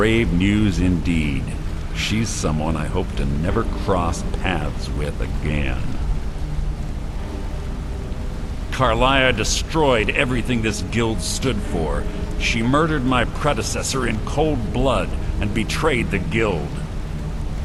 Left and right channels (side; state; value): both; identical; correlation 1.00